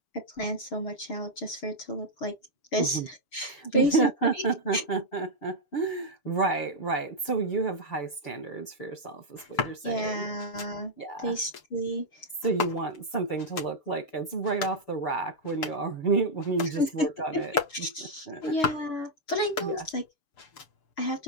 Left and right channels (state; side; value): late; right; 6.9 ms